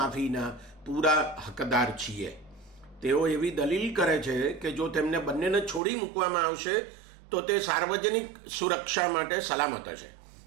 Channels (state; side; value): drops out; left; at 5.8 s